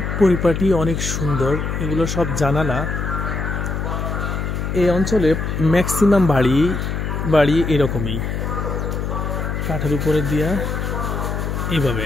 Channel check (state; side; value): noise; left; hum, 2 dB below the sound